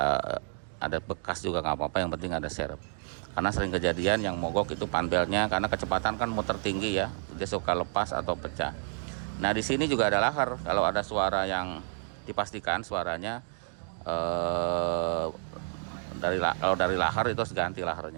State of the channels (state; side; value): silent; left; 58 dB below the other